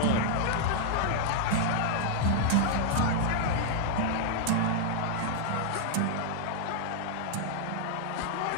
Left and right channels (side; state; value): both; different; correlation -0.01